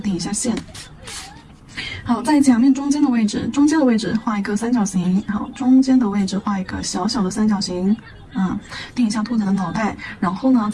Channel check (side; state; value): both; identical; correlation 1.00